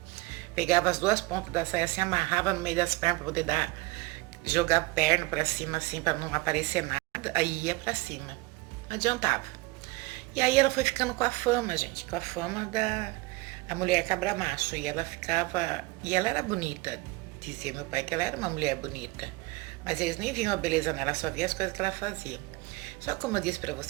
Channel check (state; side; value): quieter; left; 22.5 dB